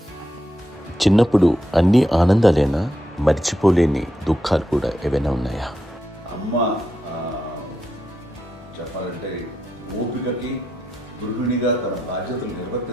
చిన్నప్పుడు అన్ని ఆనందాలేనా, మర్చిపోలేని దుఃఖాలు కూడా ఏవైనా ఉన్నాయా? అమ్మ చెప్పాలంటే ఓపికకి, గృహిణిగా తన బాధ్యతలు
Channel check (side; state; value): both; normal; correlation 0.84